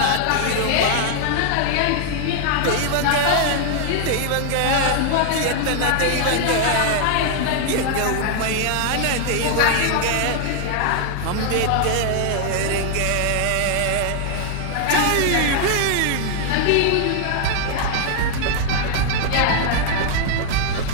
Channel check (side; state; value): both; different; correlation 0.00